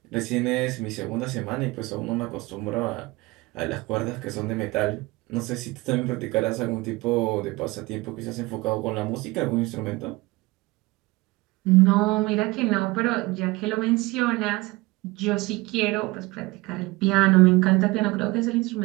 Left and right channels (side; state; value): left; quieter; 22.1 dB